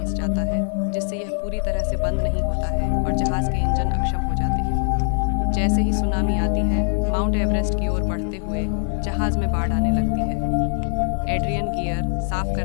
जाता है, जिससे यह पूरी तरह से बंद नहीं होता है और जहाज के इंजन अक्षम हो जाते हैं। जैसे ही सुनामी आती है, माउंट एवरेस्ट की ओर बढ़ते हुए जहाज में बाढ़ आने लगती है। एड्रियन गियर साफ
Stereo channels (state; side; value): silent; right; 57 dB below the other